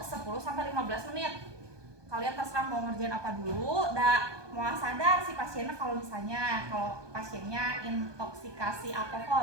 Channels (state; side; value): late; left; 1.2 ms